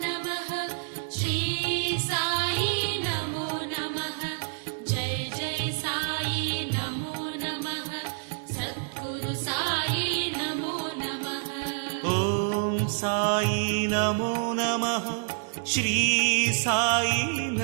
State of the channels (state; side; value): silent; left; digital silence